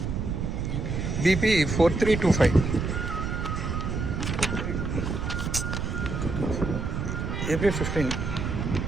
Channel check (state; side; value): noise; right; rumble, 2 dB below the sound